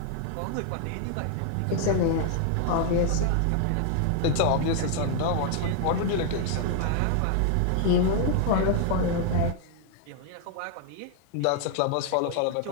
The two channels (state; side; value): different; both; correlation 0.00